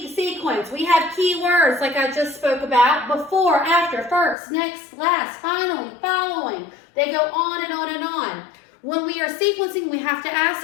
sequence? We have keywords like I just spoke about. Before, after, first, next, last, finally, following. They go on and on and on. When we are sequencing, we have to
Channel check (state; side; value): drops out; right; at 4.4 s